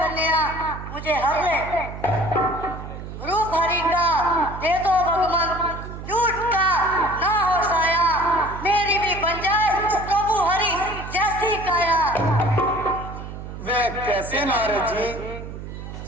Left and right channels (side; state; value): right; noise; hum, 10 dB below the sound